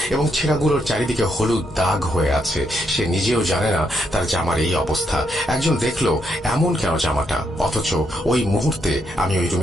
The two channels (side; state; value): both; normal; correlation 0.78